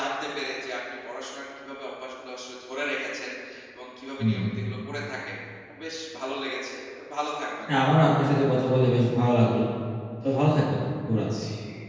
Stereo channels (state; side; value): identical; both; correlation 1.00